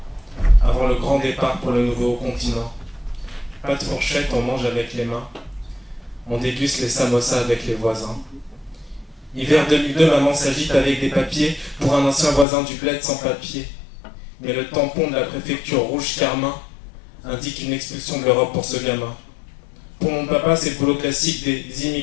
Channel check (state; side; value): drops out; right; at 12.5 s